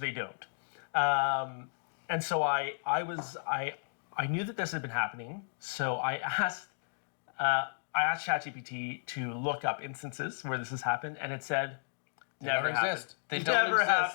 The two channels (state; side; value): silent; right; digital silence